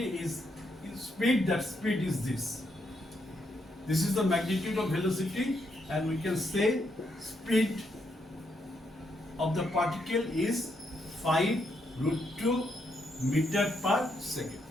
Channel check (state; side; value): normal; both; correlation 0.78